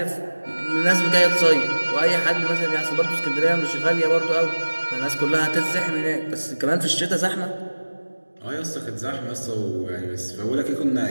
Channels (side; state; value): both; inverted; correlation -1.00